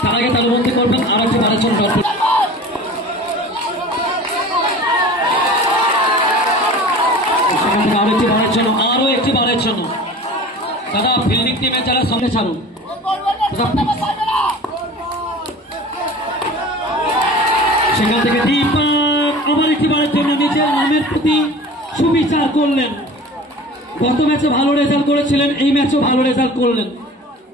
তার আগে তালুবন্দি করবেন। আরো একটি বারের জন্য সেখান থেকে আরো একটি বারের জন্য দাদা ফিল্ডিং টিমে যারা সামনে ছাড়ুন। সেখান থেকে দীপক আবার একটি বারের জন্য নিজের নামের প্রতি সুবিচার করলেন। গত ম্যাচে ভালো রেজাল্ট করেছিলেন, এই ম্যাচেও ভালো রেজাল্ট করলেন।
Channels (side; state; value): both; normal; correlation 0.40